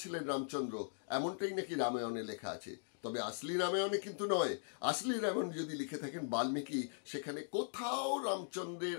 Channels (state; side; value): silent; right; digital silence